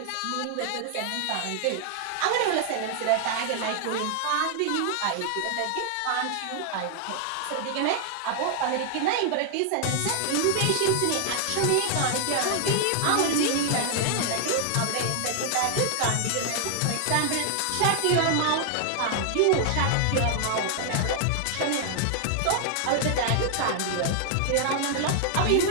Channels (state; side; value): different; both; correlation 0.00